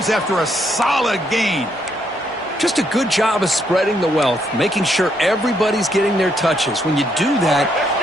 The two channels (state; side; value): normal; both; correlation 0.74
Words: after a solid gain. Just a good job of spreading the wealth, making sure everybody's getting their touches. When you do that,